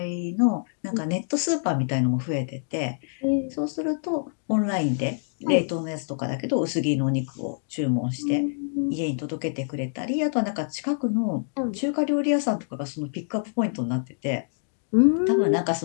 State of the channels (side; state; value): right; silent; digital silence